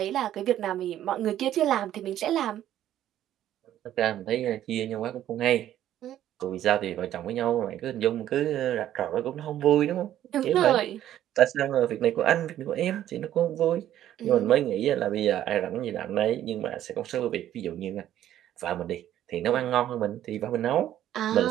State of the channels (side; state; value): left; quieter; 11.9 dB